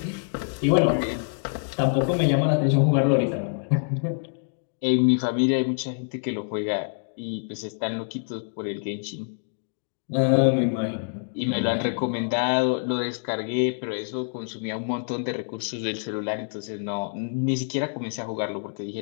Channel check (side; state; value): right; silent; digital silence